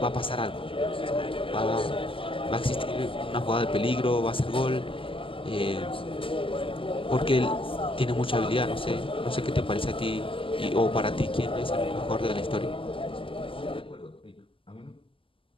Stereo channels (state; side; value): late; right; 0.25 ms